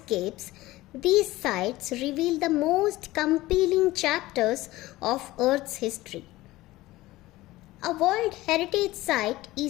these sites reveal the most compelling chapters of Earth's history. A World Heritage Site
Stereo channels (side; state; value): right; quieter; 18.0 dB